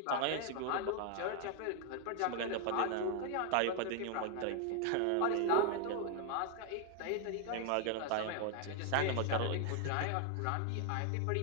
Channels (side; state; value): both; different; correlation 0.01